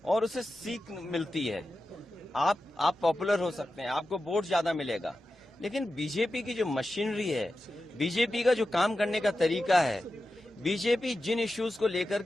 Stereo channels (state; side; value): normal; both; correlation 0.92